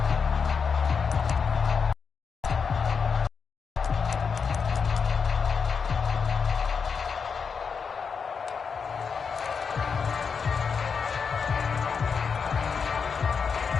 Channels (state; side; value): quieter; right; 5.9 dB